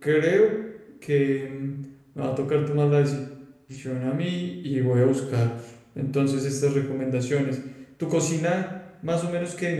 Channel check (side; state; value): both; identical; correlation 1.00